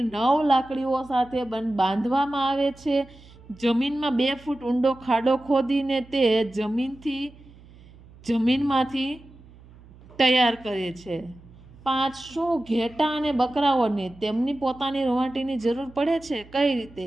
9 લાકડીઓ સાથે બાંધવામાં આવે છે। જમીનમાં 2 ફૂટ ઊંડો ખાડો ખોદીને તે જમીનમાંથી તૈયાર કરે છે। 5, શું ઘેટાં અને બકરાઓને તેમની પોતાની રૂંવાટીની જરૂર પડે છે? કઈ રીતે?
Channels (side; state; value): right; noise; hum, 23 dB below the sound